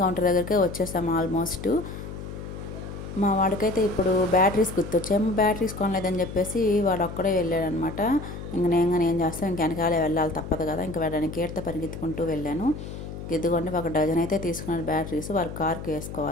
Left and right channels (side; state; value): left; noise; hum, 9 dB below the sound